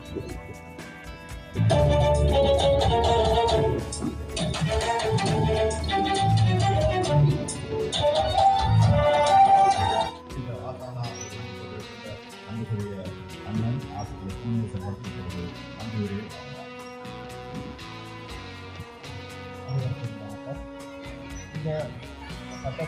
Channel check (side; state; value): both; identical; correlation 1.00